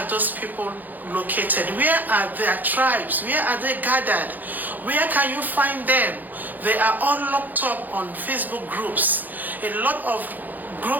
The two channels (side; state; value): left; late; 0.084 ms